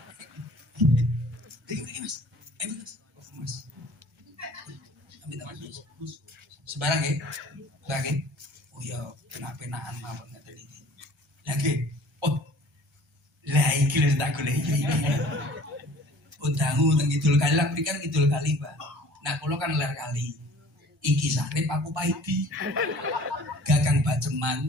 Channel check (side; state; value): both; normal; correlation 0.50